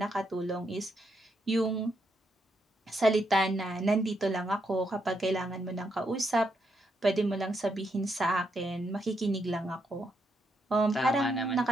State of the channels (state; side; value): normal; both; correlation 0.79